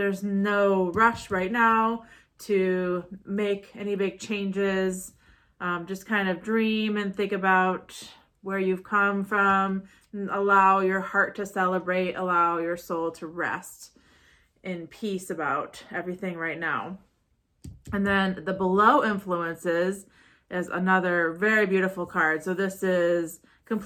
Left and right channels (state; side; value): identical; both; correlation 1.00